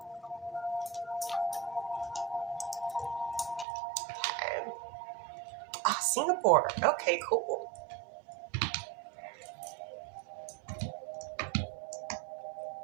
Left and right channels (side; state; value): left; drops out; at 3.7 s